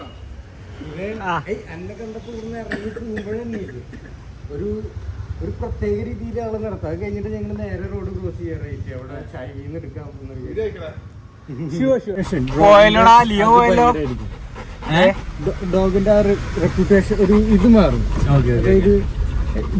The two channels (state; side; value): identical; both; correlation 1.00